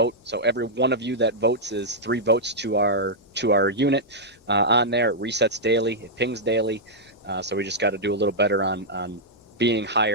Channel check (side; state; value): both; normal; correlation -0.07